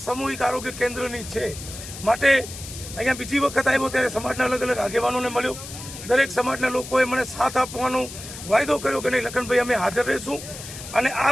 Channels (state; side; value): noise; left; hiss, 12 dB below the sound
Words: સામૂહિક આરોગ્ય કેન્દ્રની છે। માટે અહીંયા બીજી વખત આવ્યો ત્યારે સમાજના અલગ અલગ આગેવાનોને મળ્યો, દરેક સમાજના લોકોએ મને સાથ આપવાનો વાયદો કર્યો કે નહીં લખનભાઈ અમે હાજર રહીશું, અને